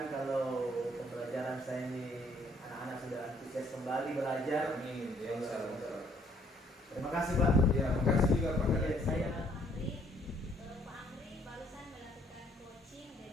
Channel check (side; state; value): both; normal; correlation 0.64